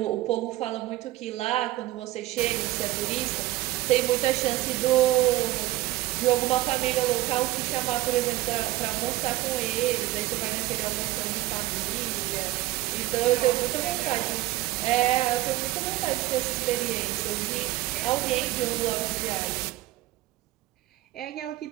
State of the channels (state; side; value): quieter; left; 16.4 dB